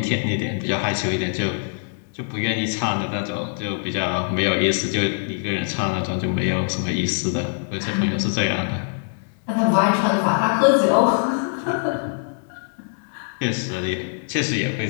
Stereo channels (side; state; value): right; silent; digital silence